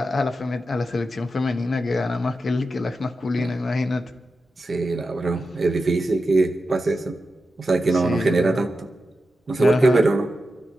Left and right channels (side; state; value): both; normal; correlation 0.90